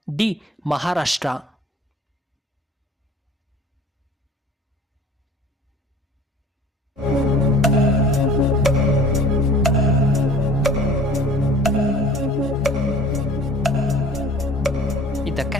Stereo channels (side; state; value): both; normal; correlation 0.47